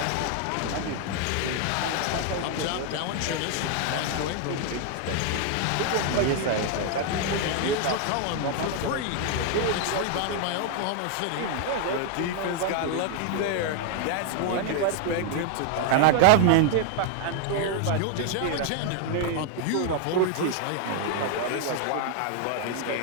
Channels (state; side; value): different; both; correlation 0.00